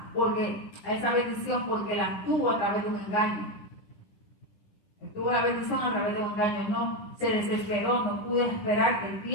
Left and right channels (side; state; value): right; late; 10 ms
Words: a esa bendición, porque la tuvo a través de un engaño. Tuvo la bendición a través de un engaño, no se desesperó, no pudo esperar el